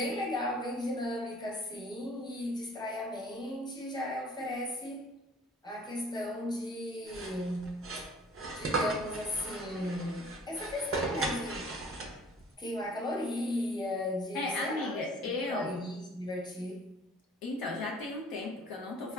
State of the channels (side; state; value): both; normal; correlation 0.52